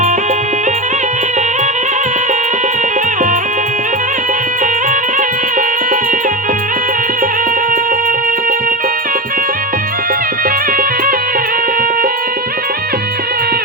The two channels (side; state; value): both; normal; correlation 0.20